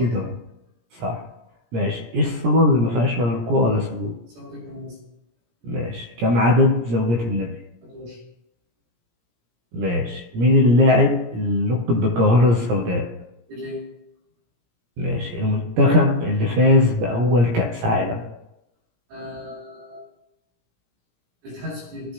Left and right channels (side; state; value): left; late; 17 ms